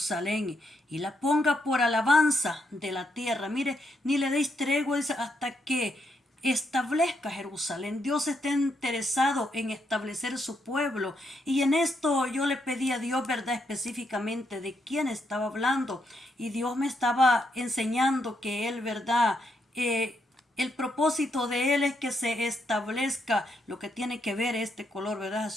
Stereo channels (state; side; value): normal; both; correlation 0.78